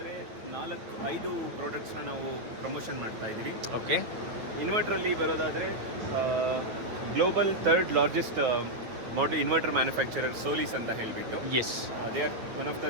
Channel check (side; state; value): left; late; 8.9 ms